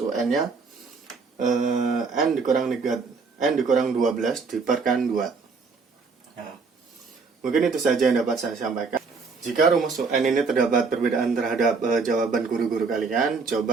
N dikurang 12 diperkan 2. Nah, mungkin itu saja yang dapat saya sampaikan. Jika rumus UN ini terdapat perbedaan terhadap jawaban guru-guru kalian,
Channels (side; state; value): left; quieter; 4.7 dB